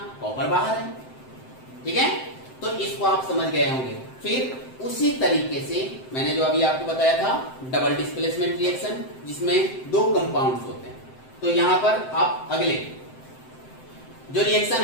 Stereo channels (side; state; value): right; late; 7.7 ms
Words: कॉपर बाहर है, ठीक है। तो इसको आप समझ गए होंगे। फिर उसी तरीके से मैंने जो अभी आपको बताया था डबल डिस्प्लेसमेंट रिएक्शन, जिसमें दो कंपाउंड्स होते हैं। तो यहां पर आप अगले जो रिएक्शन